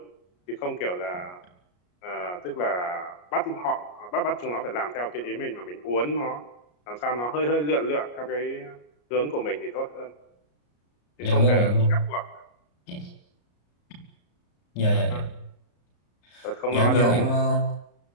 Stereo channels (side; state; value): right; late; 34 ms